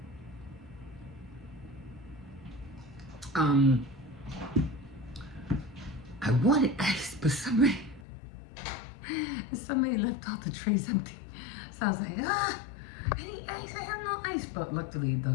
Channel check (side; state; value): right; drops out; at 8.1 s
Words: I wanted ice, but somebody left all the trays empty. So I was like, I need ice. I have no ice. But luckily,